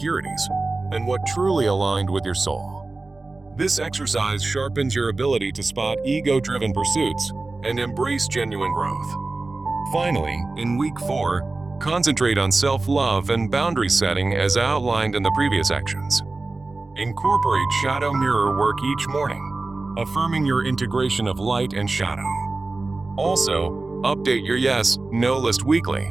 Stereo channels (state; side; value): quieter; left; 3.4 dB